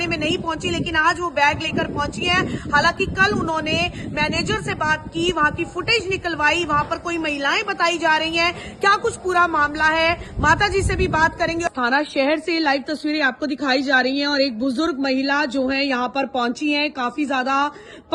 में नहीं पहुंची, लेकिन आज वो बैग लेकर पहुंची है। हालांकि कल उन्होंने मैनेजर से बात की, वहां की फुटेज निकलवाई, वहां पर कोई महिलाएं बताई जा रही हैं। क्या कुछ पूरा मामला है, माता जी से भी बात करेंगे। थाना शहर से लाइव तस्वीरें आपको दिखाई जा रही हैं और एक बुजुर्ग महिला जो है यहाँ पर पहुंची है, काफी ज्यादा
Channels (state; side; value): identical; both; correlation 1.00